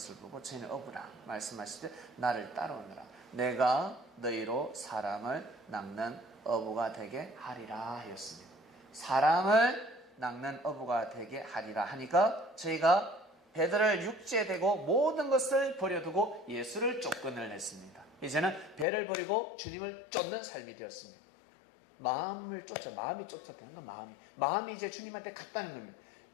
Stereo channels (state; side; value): drops out; right; at 18.9 s